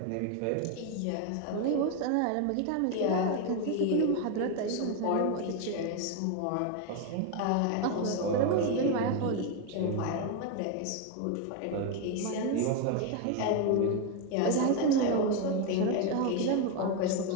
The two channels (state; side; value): different; both; correlation 0.02